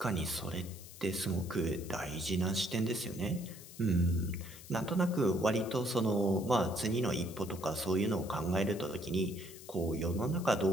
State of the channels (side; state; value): left; noise; hiss, 17 dB below the sound